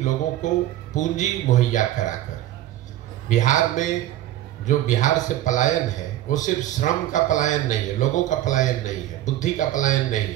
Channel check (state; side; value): quieter; left; 13.6 dB